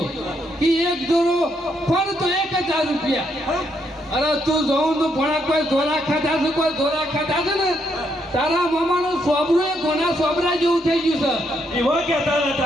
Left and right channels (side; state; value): both; normal; correlation 0.76